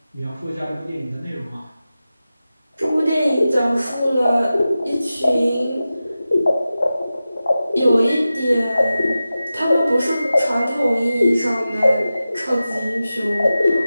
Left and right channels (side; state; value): both; inverted; correlation -0.94